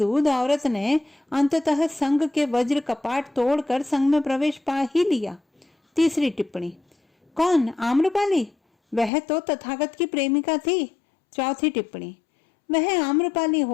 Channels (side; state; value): right; drops out; at 9.1 s